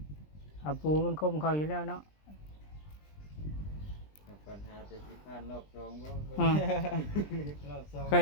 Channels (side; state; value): right; late; 20 ms